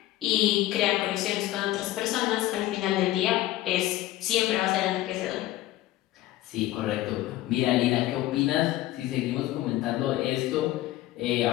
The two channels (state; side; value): quieter; right; 15.4 dB